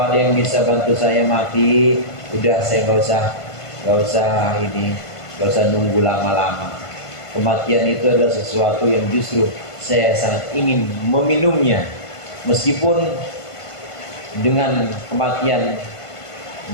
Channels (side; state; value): right; late; 1.5 ms